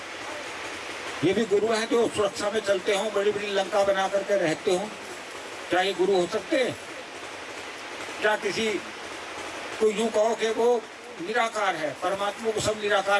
ये भी गुरु हैं जो सुरक्षा में चलते हों, बड़ी बड़ी लंका बना करके रहते हों। क्या ये गुरु हो सकते हैं? क्या किसी को यूं कहो कि वो निराकार है, परमात्मा को सब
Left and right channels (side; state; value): both; identical; correlation 1.00